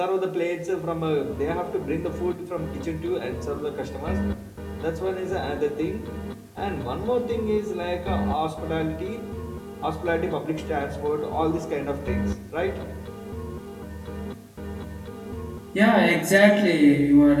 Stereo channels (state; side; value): identical; both; correlation 1.00